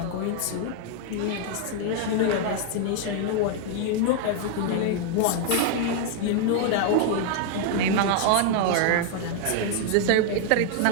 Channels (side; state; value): both; different; correlation 0.00